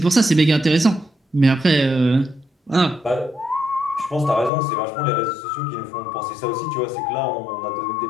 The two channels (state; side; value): drops out; right; at 4.5 s